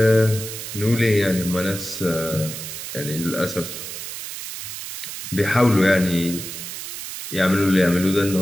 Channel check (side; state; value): right; noise; hiss, 8 dB below the sound